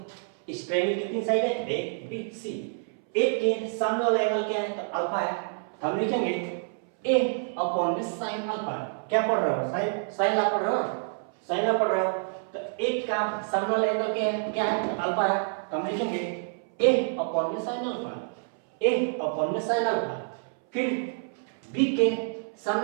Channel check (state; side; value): silent; left; 59 dB below the other